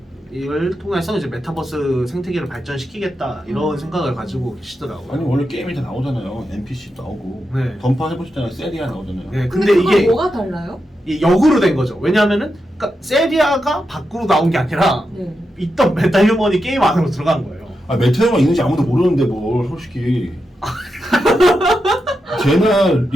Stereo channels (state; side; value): normal; both; correlation 0.87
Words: 통해서 이제 메타버스 생태계를 발전시키겠다 이런 생각을 가지고 계시더라고요. 아니 원래 게임이 다 나오잖아요. NPC도 나오고 네. 던파 해보셨잖아요. 세리아 나오잖아요. 네, 근데 근데 그건 이게 뭐가 달라요? 이 역으로 된 거죠. 왜냐하면은 그러니까 세리아가 밖으로 나온 게 아니라 네. 있던 메타 휴먼이 게임 안으로 들어간 거예요. 아 메테오가 있는지 아무도 모르는데 뭘 솔직히 제나